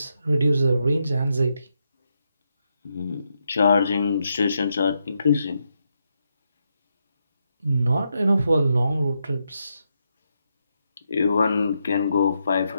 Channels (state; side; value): inverted; both; correlation -0.82